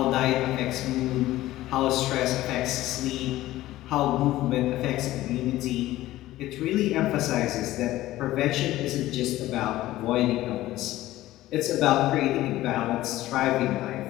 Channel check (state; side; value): quieter; right; 15.8 dB